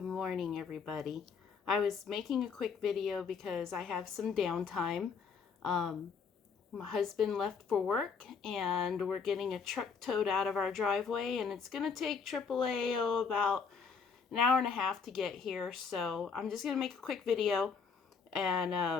morning, everybody. I was making a quick video because I have some downtime. My husband left for work and we're getting a truck towed out of our driveway, and it's going to take AAA about an hour and a half to get here. So I'm just going to make a quick video,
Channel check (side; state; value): right; quieter; 5.6 dB